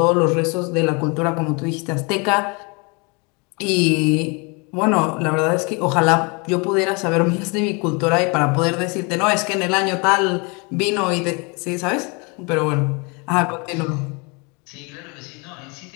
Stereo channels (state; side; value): quieter; right; 30.8 dB